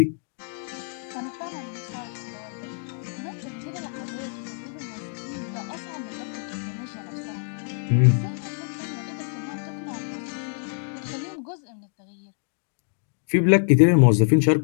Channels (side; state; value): right; silent; 61 dB below the other